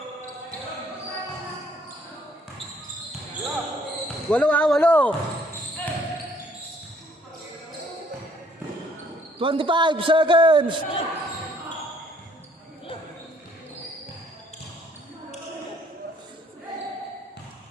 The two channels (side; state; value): both; normal; correlation 0.63